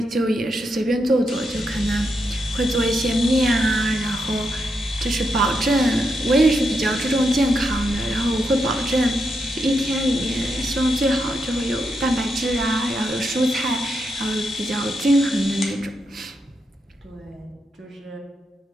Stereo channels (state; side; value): normal; both; correlation 0.83